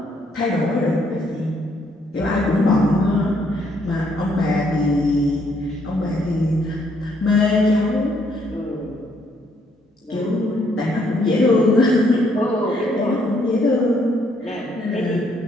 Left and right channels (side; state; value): both; normal; correlation 0.70